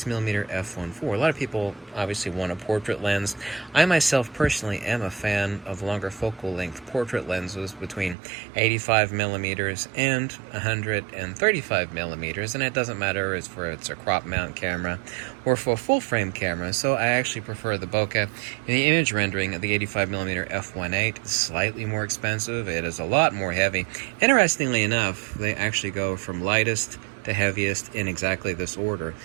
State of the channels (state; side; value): drops out; left; at 8.2 s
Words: f1.4. A lot of people obviously want a portrait lens. I myself personally am a fan of longer focal length portrait lenses between 85mm and 135mm, and it doesn't matter if it's a crop mount camera or for a full frame camera. So I actually prefer the bokeh. In the image rendering of the 85mm f1.8, it's slightly more expensive. It is a lot more heavy. Interestingly enough, they actually go from lightest to heaviest in exactly this order.